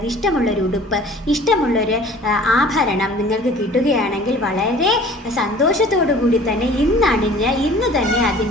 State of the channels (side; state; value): both; normal; correlation 0.48